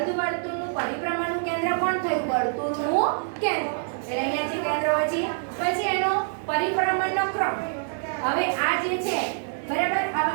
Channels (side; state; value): left; silent; 61 dB below the other